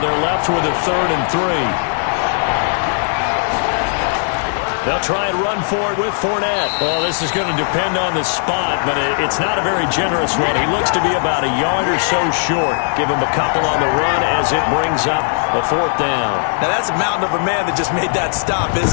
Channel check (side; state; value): right; silent; 68 dB below the other